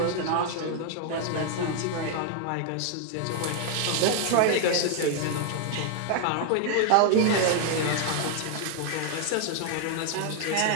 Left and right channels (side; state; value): both; different; correlation 0.00